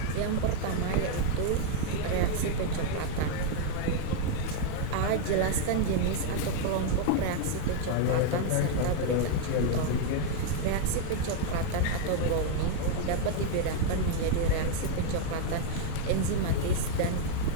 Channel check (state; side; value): different; both; correlation 0.00